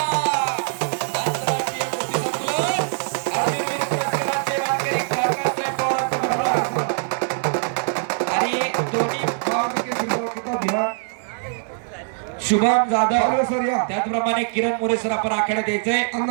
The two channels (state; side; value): silent; left; digital silence